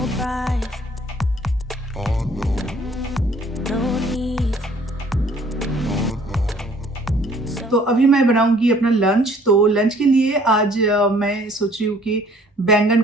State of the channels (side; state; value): both; normal; correlation 0.57